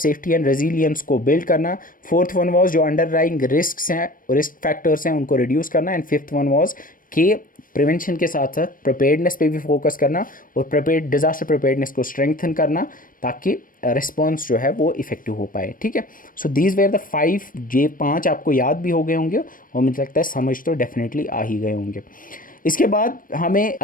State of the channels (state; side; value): late; right; 0.40 ms